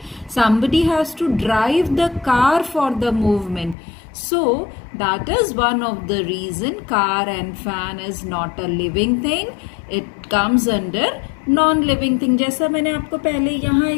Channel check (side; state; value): right; drops out; at 3.8 s